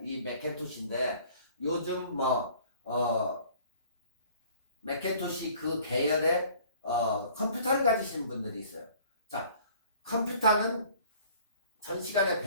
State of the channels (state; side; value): inverted; both; correlation -0.53